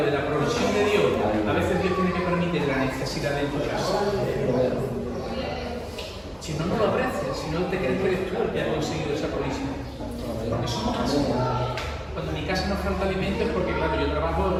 de la provisión de Dios, a veces Dios tiene que permitir la necesidad de tu casa. Si no, no lo aprecias, si no te crees que eres tú el que ha conseguido esa provisión. Porque somos así. Cuando en mi casa no falta alimento es porque, claro, yo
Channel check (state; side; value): identical; both; correlation 1.00